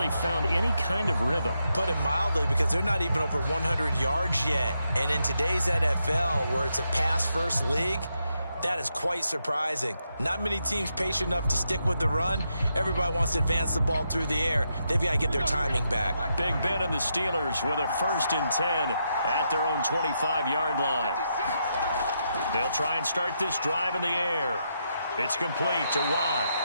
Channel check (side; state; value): both; inverted; correlation -0.82